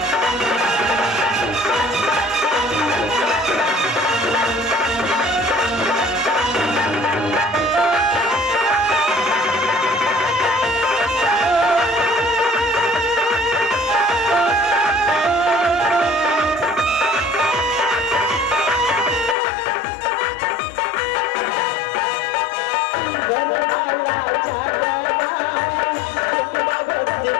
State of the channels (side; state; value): right; drops out; at 19.4 s